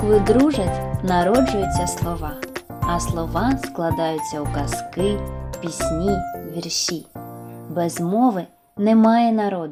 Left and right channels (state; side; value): identical; both; correlation 1.00